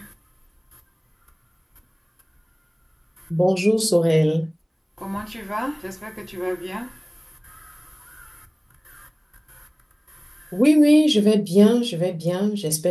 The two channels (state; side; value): identical; both; correlation 1.00